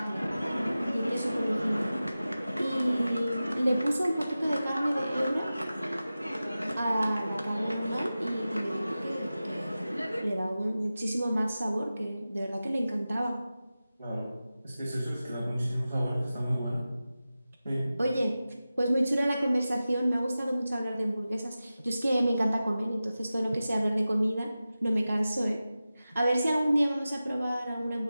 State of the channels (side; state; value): both; inverted; correlation -0.95